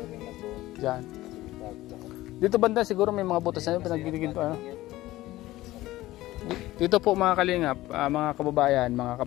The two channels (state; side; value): quieter; right; 16.9 dB